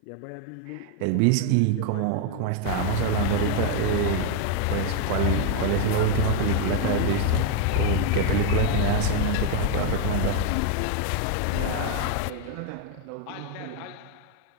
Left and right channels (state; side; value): different; both; correlation 0.01